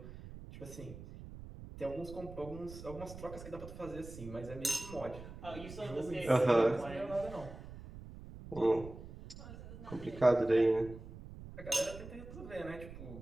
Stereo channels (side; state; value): right; noise; rumble, 13 dB below the sound